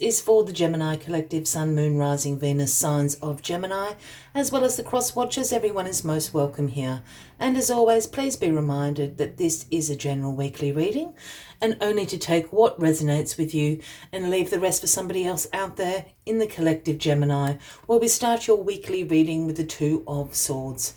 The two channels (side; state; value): both; identical; correlation 1.00